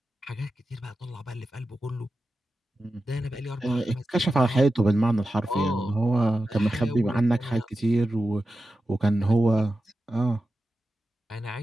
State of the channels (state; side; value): normal; both; correlation 0.92